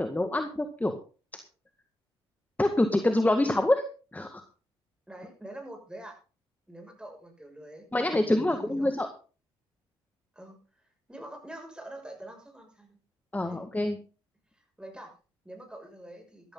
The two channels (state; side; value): normal; both; correlation 0.93